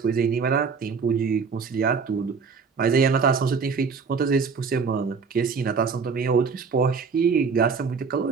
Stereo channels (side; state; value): left; quieter; 5.4 dB